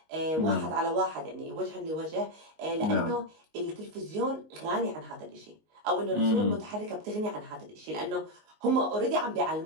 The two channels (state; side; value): late; left; 19 ms